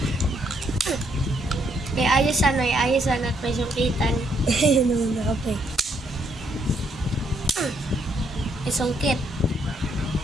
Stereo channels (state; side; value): normal; both; correlation 0.73